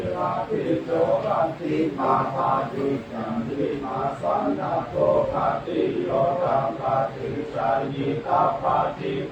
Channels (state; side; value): identical; both; correlation 1.00